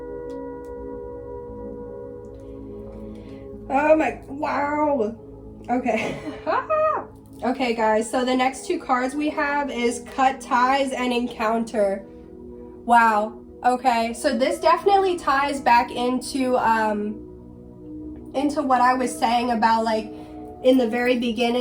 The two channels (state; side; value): identical; both; correlation 1.00